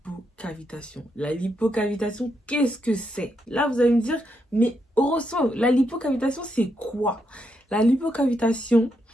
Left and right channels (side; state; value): both; normal; correlation 0.80